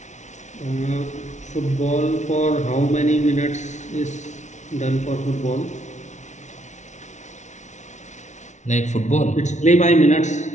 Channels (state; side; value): late; right; 0.34 ms